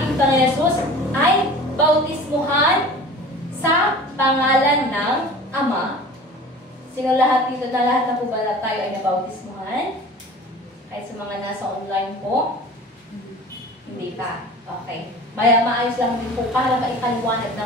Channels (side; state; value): both; normal; correlation 0.41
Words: Panginoon Jesus ay bautismuhan sa pangalan ng Ama. Sino lahat dito na lahat na po ba tayo ay nabautismuhan? Kahit sa mga nasa online po? Hindi pa. Okay. Maayos lang din po para maipaliwanag